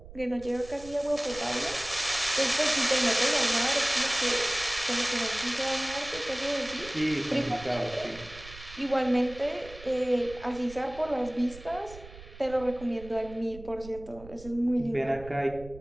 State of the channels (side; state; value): right; noise; rumble, 17 dB below the sound